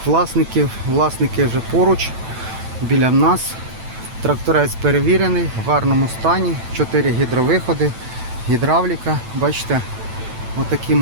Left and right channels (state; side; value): late; left; 9.0 ms